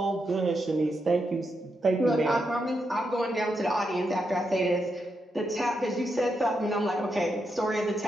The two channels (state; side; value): normal; both; correlation 0.83